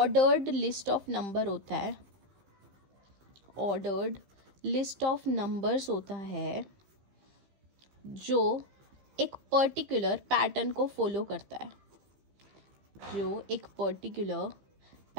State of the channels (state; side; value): late; left; 15 ms